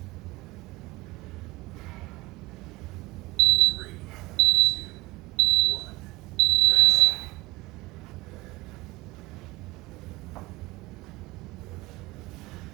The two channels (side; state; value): left; quieter; 20.7 dB